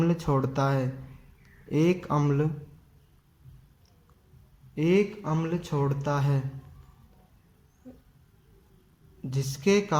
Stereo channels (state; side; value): identical; both; correlation 1.00